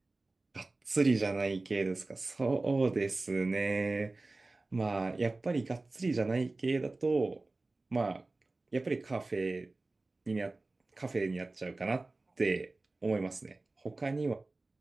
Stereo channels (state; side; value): quieter; left; 3.2 dB